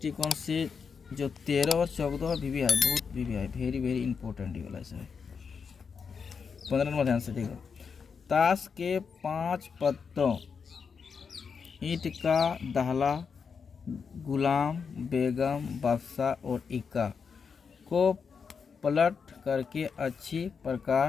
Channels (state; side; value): quieter; right; 5.9 dB